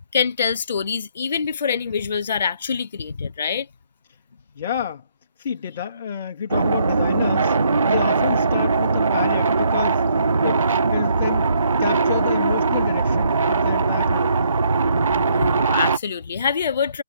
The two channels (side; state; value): both; inverted; correlation -0.69